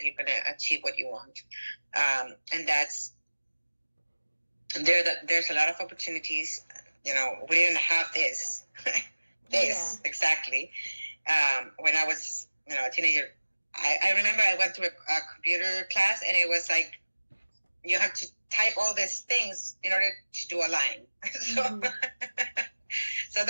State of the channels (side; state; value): both; inverted; correlation -1.00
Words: you're going to achieve what you want, and there's a lot of opportunities. We didn't have this exactly when I was a teenager. I remember I went to a computer class, and it was you have to type all these things in order to do a line. So